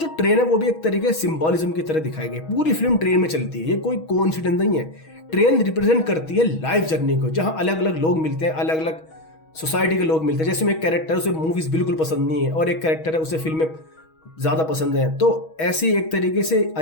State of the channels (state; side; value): late; right; 6.3 ms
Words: ट्रेन है वो भी एक तरीके से सिंबोलिज्म की तरह दिखाई गई। पूरी फिल्म ट्रेन में चलती है, ये कोई कोइंसिडेंस नहीं है। ट्रेन रिप्रेजेंट करती है लाइफ जर्नी को, जहां अलग अलग लोग मिलते हैं, अलग अलग सोसाइटी के लोग मिलते हैं। जैसे में एक कैरेक्टर उसे मूवीज बिल्कुल पसंद नहीं है और एक कैरेक्टर है उसे फिल्में ज्यादा पसंद है। तो ऐसी एक तरीके से